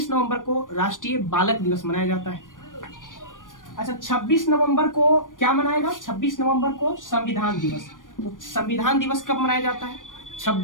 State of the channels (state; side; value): late; right; 0.88 ms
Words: नवंबर को राष्ट्रीय बालक दिवस मनाया जाता है। अच्छा, 26 नवंबर को क्या मनाएगा? 26 नवंबर को संविधान दिवस। तो संविधान दिवस कब मनाया जाता है?